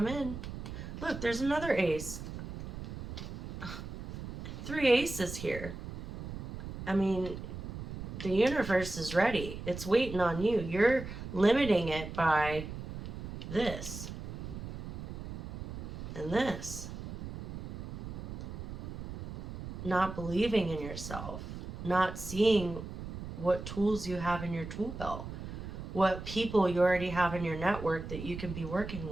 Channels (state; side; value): noise; right; rumble, 9 dB below the sound